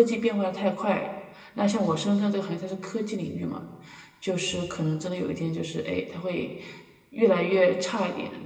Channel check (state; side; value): identical; both; correlation 1.00